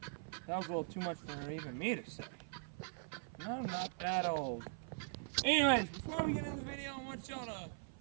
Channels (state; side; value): silent; left; 50 dB below the other